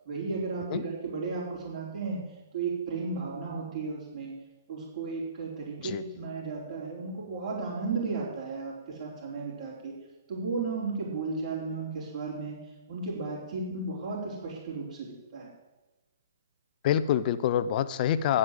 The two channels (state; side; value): inverted; both; correlation -0.43